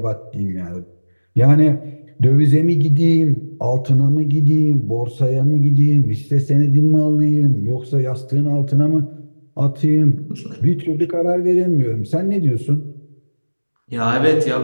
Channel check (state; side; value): inverted; both; correlation -1.00